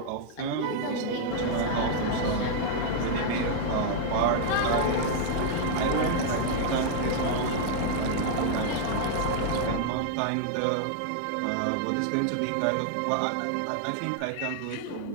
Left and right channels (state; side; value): different; both; correlation -0.01